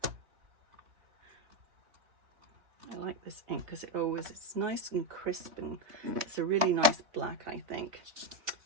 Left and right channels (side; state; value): left; late; 3.7 ms